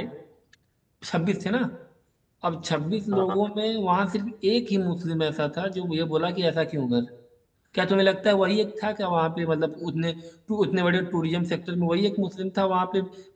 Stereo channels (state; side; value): identical; both; correlation 1.00